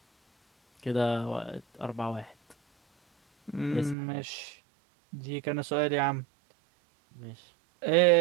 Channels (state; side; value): drops out; left; at 4.0 s